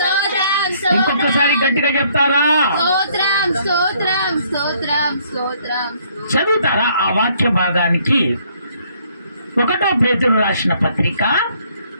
స్తోత్రం. ఇంకొకసారి గట్టిగా చెప్తారా? స్తోత్రం స్తోత్రం స్తోత్రం స్తోత్రం. చదువుతారా ఆ వాక్య భాగానికి? 1 పేతురు రాసిన పత్రిక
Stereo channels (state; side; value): inverted; both; correlation -0.65